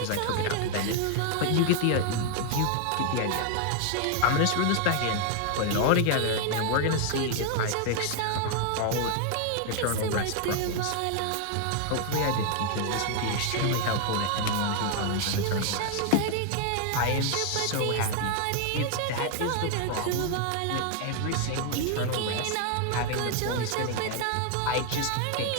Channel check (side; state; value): both; different; correlation 0.00